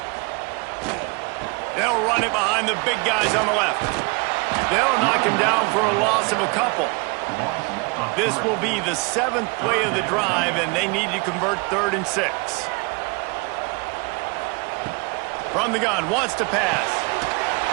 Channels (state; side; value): quieter; left; 30.5 dB